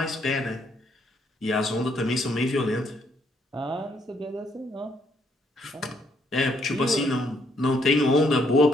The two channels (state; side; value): normal; both; correlation 0.71